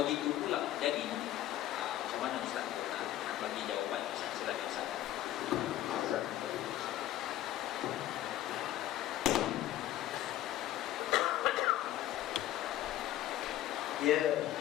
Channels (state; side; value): quieter; right; 13.6 dB